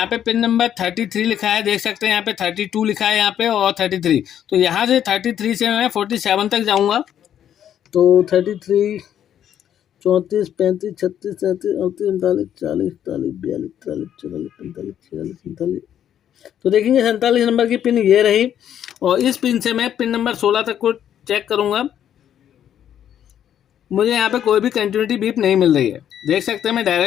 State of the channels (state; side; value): quieter; right; 10.0 dB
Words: पे पिन नंबर 33 लिखा है, देख सकते हैं यहाँ पे 32 लिखा है यहाँ पे और 33। तो यहाँ से 33 से मैं 47 तक जाऊँगा। तो 33 34 35 36 37 38 39 40 41 42 43 44 45 46 47 तो देखेंगे 47 नंबर की पिन ये रही। और इस पिन से मैं पिन नंबर 16 तक को चेक करूंगा। मुझे यहाँ पे कोई भी कंटिन्यूटी बीप नहीं मिल रही है। देख सकते हैं मैं